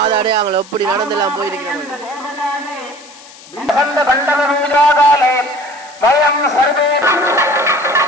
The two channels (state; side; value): noise; left; hiss, 21 dB below the sound